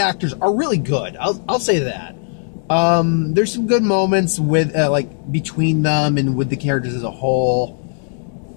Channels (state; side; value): silent; right; digital silence